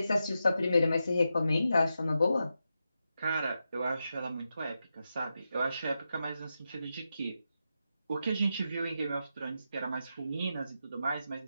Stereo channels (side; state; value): both; inverted; correlation -0.88